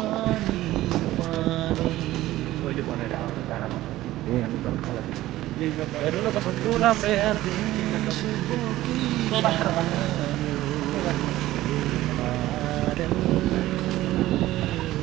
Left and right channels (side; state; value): left; quieter; 15.7 dB